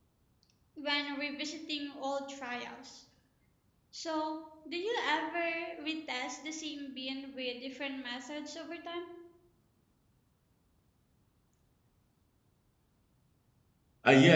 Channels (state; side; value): identical; both; correlation 1.00